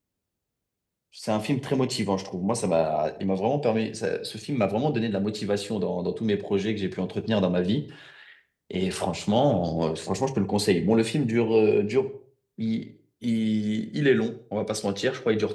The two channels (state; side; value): identical; both; correlation 1.00